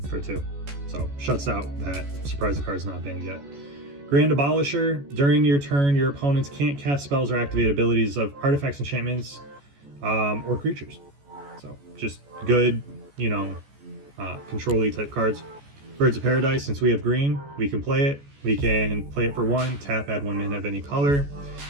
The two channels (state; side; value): late; left; 14 ms